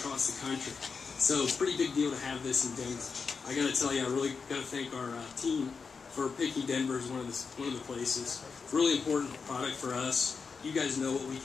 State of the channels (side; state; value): right; quieter; 5.2 dB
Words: the country, so it's a pretty big deal to have this in Denver. I got to tell you, I really got to thank our team for picking Denver as one of the places. It's a really important product for us. You guys know what we